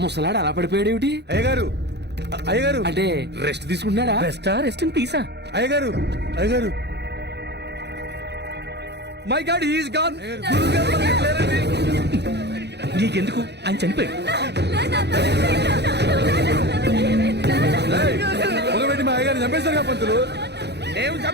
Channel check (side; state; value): left; late; 0.49 ms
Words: ముసలాడు అలా పడిపోయాడు ఏమిటి? అయ్యగారు అయ్యగారు అంటే రెస్ట్ తీసుకుంటున్నాడా? Rest in peace. అయ్యగారు అయ్యగారు my god he is gone. నీకెందుకు? ఆయన చనిపోయాడు. పొగబెట్టి మా అయ్యగారిని చంపేశారు పంతులు. నేను